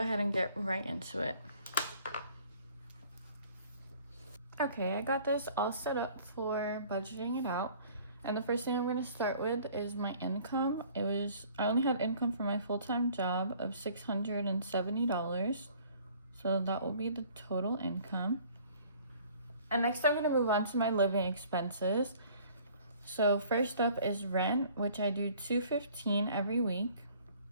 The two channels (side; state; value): both; inverted; correlation -0.54